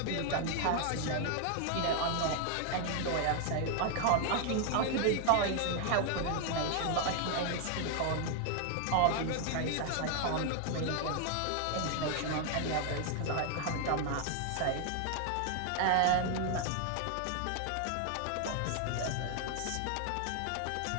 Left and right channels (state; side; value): different; both; correlation 0.00